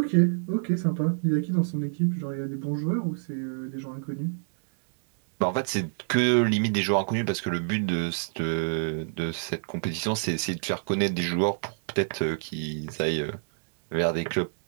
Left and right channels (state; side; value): silent; left; digital silence